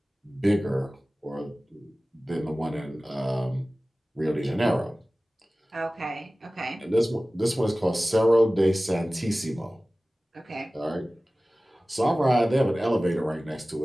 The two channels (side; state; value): both; normal; correlation 0.97